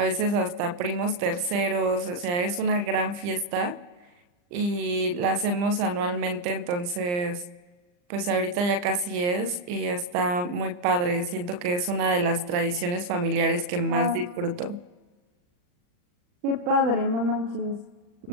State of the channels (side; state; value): left; late; 39 ms